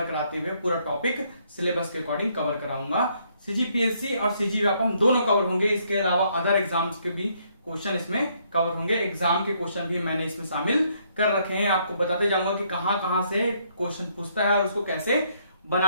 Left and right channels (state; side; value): inverted; both; correlation -0.70